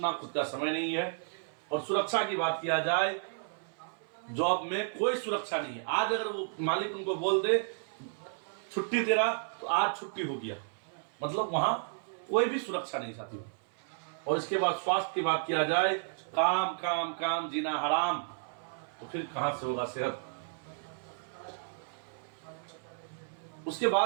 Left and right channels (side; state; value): left; silent; 56 dB below the other